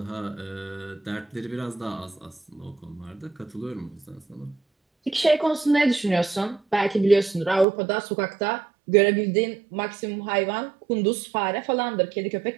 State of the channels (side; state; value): left; drops out; at 7.7 s